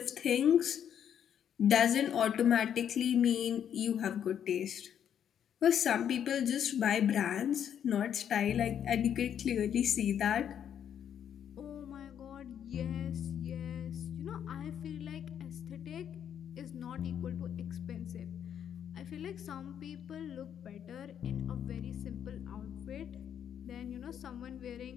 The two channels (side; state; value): right; quieter; 9.1 dB